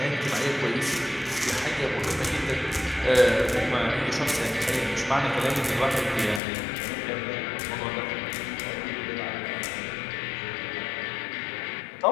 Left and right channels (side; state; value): right; drops out; at 6.4 s